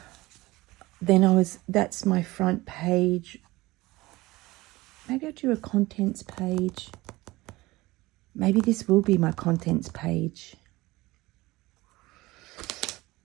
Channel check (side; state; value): left; quieter; 19.9 dB